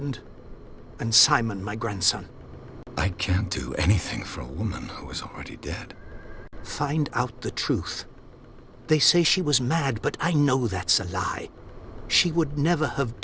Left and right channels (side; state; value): both; identical; correlation 1.00